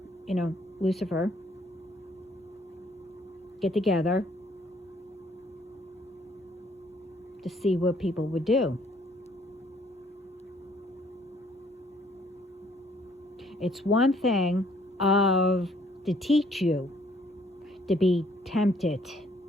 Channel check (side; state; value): both; normal; correlation 0.63